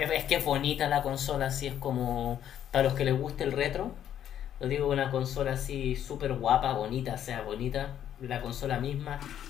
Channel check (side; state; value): right; quieter; 10.3 dB